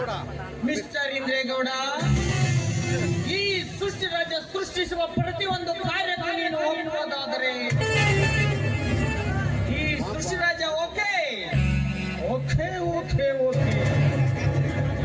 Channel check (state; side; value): identical; both; correlation 1.00